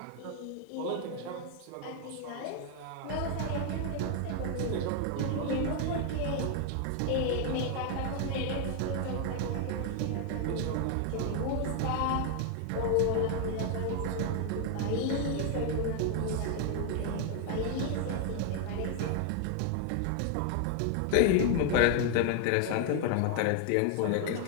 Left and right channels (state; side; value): different; both; correlation 0.00